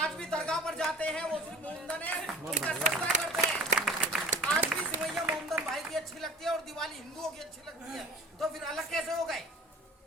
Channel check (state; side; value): normal; both; correlation 0.42